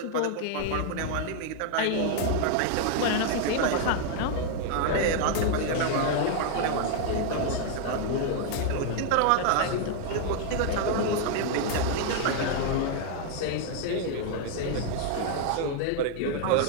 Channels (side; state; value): both; different; correlation 0.00